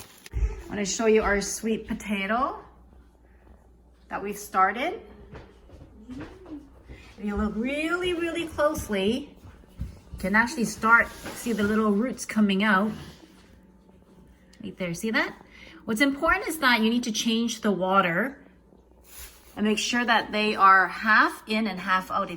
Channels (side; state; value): both; identical; correlation 1.00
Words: I'm going to show you our sweet potato that we've started. If you look really closely, you can actually see the little roots coming out. Right there, see that? What's important is that you need to change the water and make sure that they are half in and half out,